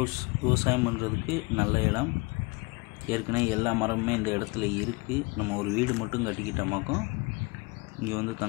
விவசாயம் பண்ணுறதுக்கு நல்ல இடம். ஏற்கனவே எல்லா மரமுமே இந்த இடத்துல இருக்குது. நம்ம ஒரு வீடு மட்டும் கட்டிக்கிட்டோமாக்கும் இங்கே வந்து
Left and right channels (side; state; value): right; quieter; 27.1 dB